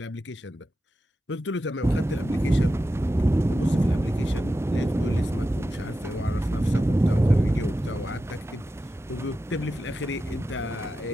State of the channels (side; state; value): both; normal; correlation 0.91